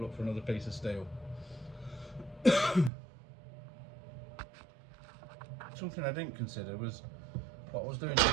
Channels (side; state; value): left; drops out; at 2.9 s